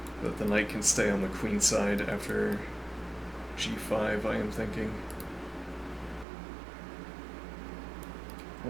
that the knight can stay on the queen side after g5, I am thinking.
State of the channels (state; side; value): drops out; left; at 6.2 s